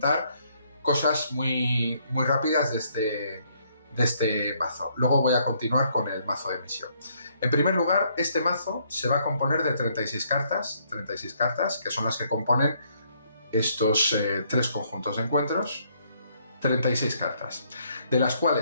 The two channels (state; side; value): inverted; both; correlation -0.69